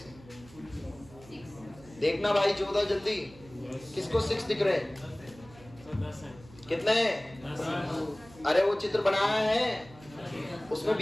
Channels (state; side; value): noise; right; hum, 22 dB below the sound